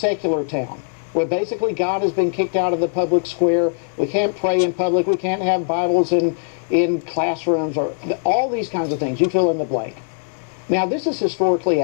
town, where basically God has been kicked out of the public square. We can't pray in public. We can't have Bibles in classrooms, or all these kinds of things. You fill in the blank. Now, this is historically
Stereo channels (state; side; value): silent; right; 65 dB below the other